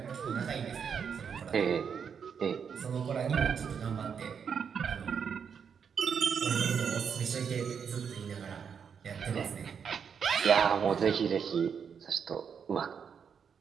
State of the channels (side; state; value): left; quieter; 6.9 dB